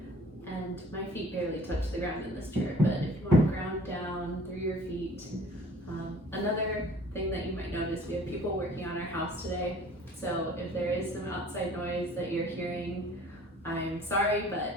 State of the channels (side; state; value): both; normal; correlation 0.50